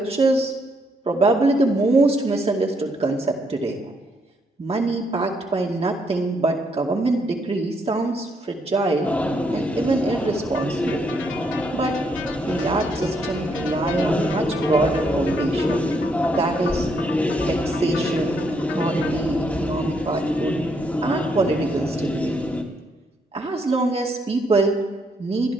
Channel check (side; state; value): both; normal; correlation 0.74